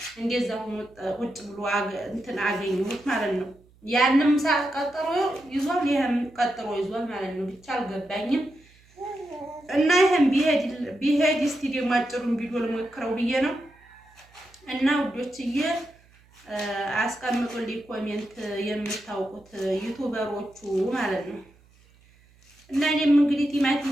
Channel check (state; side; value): noise; right; hum, 29 dB below the sound